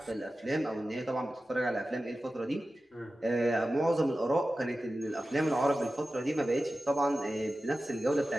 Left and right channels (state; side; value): normal; both; correlation 0.94